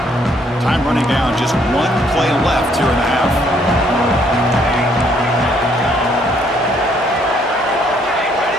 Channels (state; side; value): normal; both; correlation 0.67